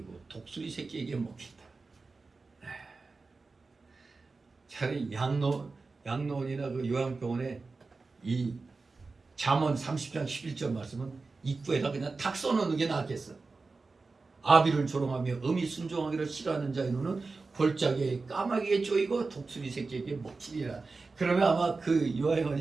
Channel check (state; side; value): quieter; left; 4.0 dB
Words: 독수리 새끼에게 먹힌다. 차라리 양로원이나 그 요양병원에 이 잠언 30장 11절 말씀은 입구에다 그냥 탁 써놓는 게 낫겠어. 아비를 조롱하며 어미 순종하기를 싫어하는 자의 눈은 골짜기에 까마귀에 쪼이고 독수리 새끼에게 먹히리라. 그러면 아마 그